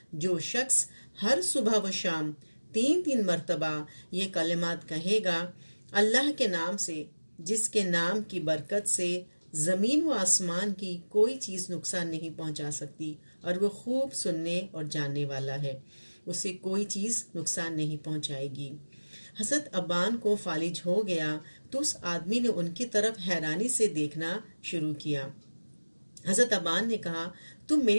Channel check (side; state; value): both; inverted; correlation -1.00